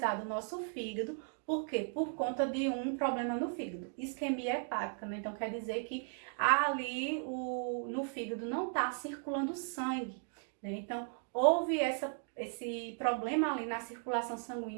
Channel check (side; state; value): left; silent; 53 dB below the other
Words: o nosso fígado. Por quê? Por conta de um problema no fígado, isquemia hepática, né? Então, quer dizer que ali no fígado não está circulando sangue, né? Então, houve esse problema ali na circulação